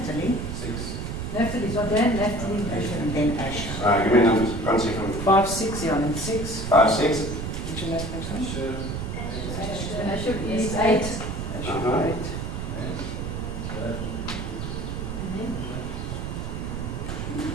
Naphtali, so Dan, Naphtali, And then Asher. Alright, give me numbers. Can't see from 5, 6, yeah, and 6. 5, 6. Which is next one? Asher is 8. Uh-huh. 8.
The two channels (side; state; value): right; noise; rumble, 4 dB below the sound